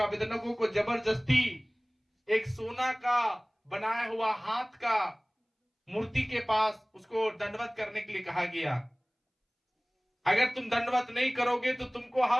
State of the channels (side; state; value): both; identical; correlation 1.00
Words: को जबरदस्ती एक सोना का बनाया हुआ हाथ का मूर्ति के पास उसको दंडवत करने के लिए कहा गया। अगर तुम दंडवत नहीं करोगे तो तुमको